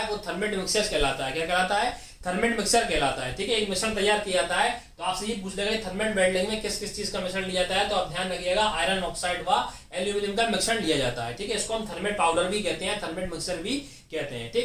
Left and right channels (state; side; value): identical; both; correlation 1.00